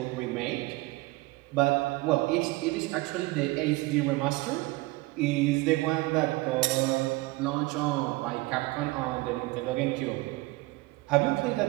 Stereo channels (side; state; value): left; quieter; 21.7 dB